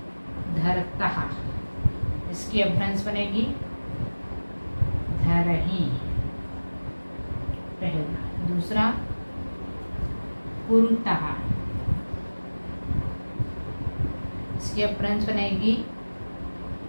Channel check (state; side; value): inverted; both; correlation -1.00